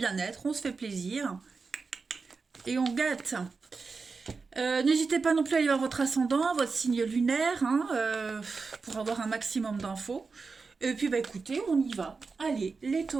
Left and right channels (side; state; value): left; quieter; 4.6 dB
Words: on se fait plaisir. Et on gâte. N'hésitez pas non plus à aller voir votre ascendant, votre signe lunaire, hein, pour avoir un maximum d'infos. Et puis, écoutez, on y va. Allez, les